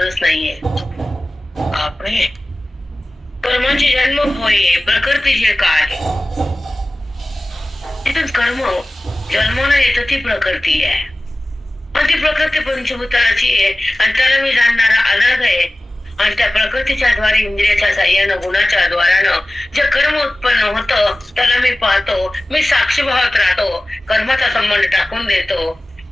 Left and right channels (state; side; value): normal; both; correlation 0.96